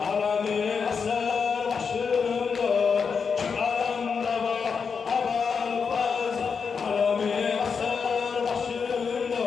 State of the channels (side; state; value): right; quieter; 5.8 dB